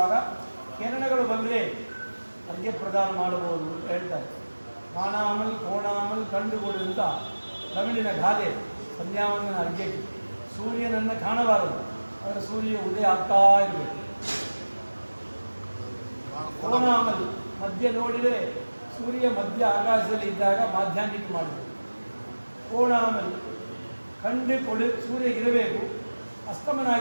ಕಿರಣಗಳು ಬಂದರೆ ಅರ್ಘ್ಯ ಪ್ರದಾನ ಮಾಡಬಹುದು ಅಂತ ಹೇಳ್ತಾರೆ. ಕಾಣಾಮಲ್ ಕೋಣಾಮಲ್ ಕಂಡುಕೊಡು ಅಂತ ತಮಿಳಿನ ಗಾದೆ. ಸಂಧ್ಯಾವಂದನ ಅರ್ಘ್ಯಕ್ಕೆ ಸೂರ್ಯನನ್ನು ಕಾಣಬಾರದು, ಆದರೆ ಸೂರ್ಯ ಉದಯ ಆಗ್ತಾ ಇರಬೇಕು. ಕೋಣಾಮಲ್ ಮಧ್ಯ ನೋಡಿದರೆ ಸೂರ್ಯ ಮಧ್ಯ ಆಕಾಶದಲ್ಲಿ ಇದ್ದಾಗ ಮಾಧ್ಯಾಹ್ನಿಕ ಮಾಡಬೇಕು. ಕೋಣಾಮಲ್ ಕಂಡು ಸೂರ್ಯ ಇರಬೇಕು, ಅಸ್ತಮನ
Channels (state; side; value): inverted; both; correlation -1.00